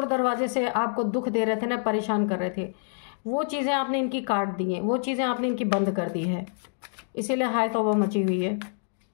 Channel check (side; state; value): right; silent; digital silence